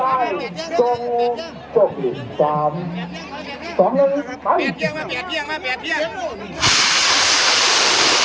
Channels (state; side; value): identical; both; correlation 1.00